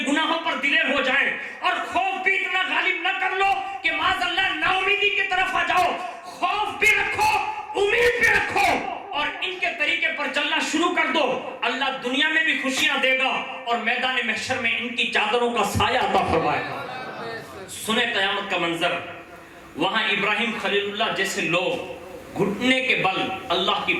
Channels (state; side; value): identical; both; correlation 1.00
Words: گناہوں پر دلیر ہو جائیں، اور خوف بھی اتنا غالب نہ کر لو کہ معاذ اللہ نا امیدی کی طرف آ جاؤ. خوف بھی رکھو، امید بھی رکھو، اور ان کے طریقے پر چلنا شروع کر دو. اللہ دنیا میں بھی خوشیاں دے گا اور میدان محشر میں ان کی چادروں کا سایہ عطا فرمائے گا. سنیں قیامت کا منظر، وہاں ابراہیم خلیل اللہ جیسے لوگ گھٹنے کے بل اللہ کی